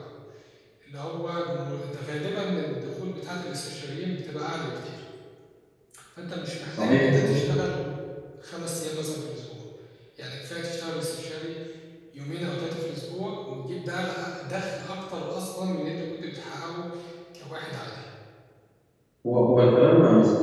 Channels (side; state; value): both; identical; correlation 1.00